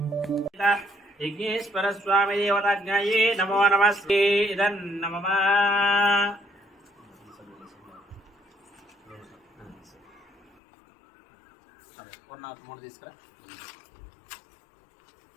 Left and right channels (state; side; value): drops out; right; at 10.5 s